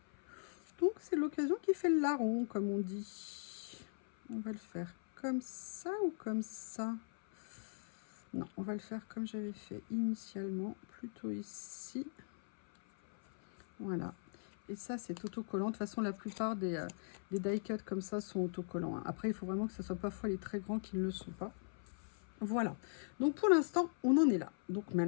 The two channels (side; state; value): right; silent; 51 dB below the other